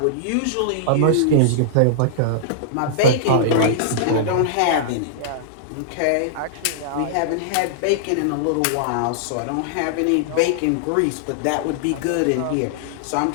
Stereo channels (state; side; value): different; both; correlation -0.02